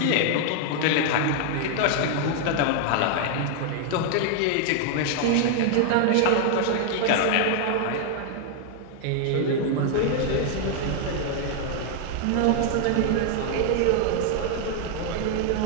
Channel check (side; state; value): both; different; correlation 0.00